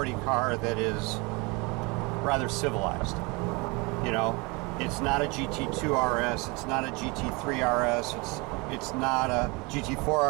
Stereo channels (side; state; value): left; quieter; 27.1 dB